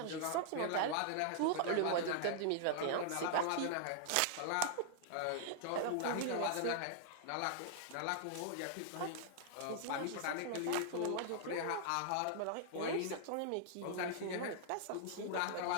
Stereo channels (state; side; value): different; both; correlation -0.01